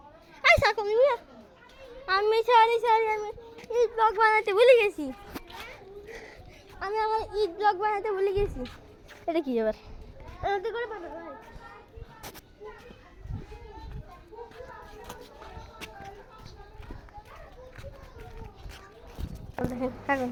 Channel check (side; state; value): both; identical; correlation 1.00